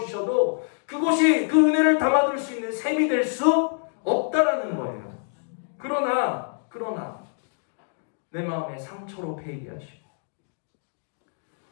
그곳이 그 은혜를 담아둘 수 있는 샘이 될 수 없다라는 거예요. 그러나 내 마음에 상처로 패이게 하시고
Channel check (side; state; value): right; silent; digital silence